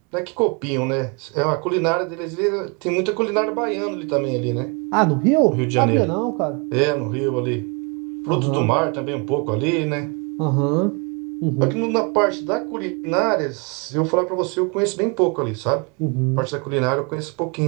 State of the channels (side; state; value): left; quieter; 32.7 dB